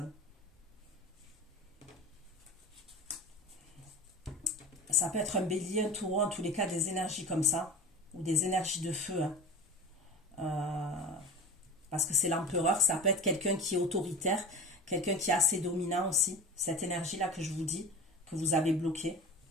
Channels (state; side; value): normal; both; correlation 0.33